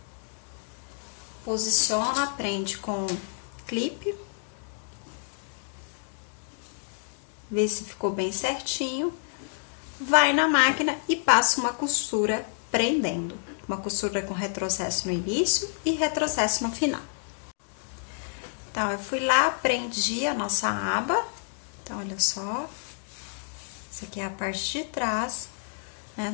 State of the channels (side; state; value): right; silent; digital silence